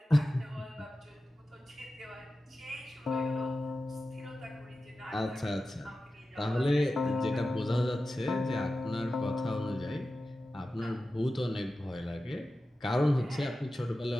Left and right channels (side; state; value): both; normal; correlation 0.93